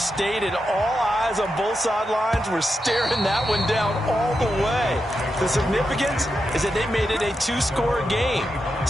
All eyes on both sidelines were staring that one down all the way. The significance is that they made it a 2-score game.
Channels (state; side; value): normal; both; correlation 0.87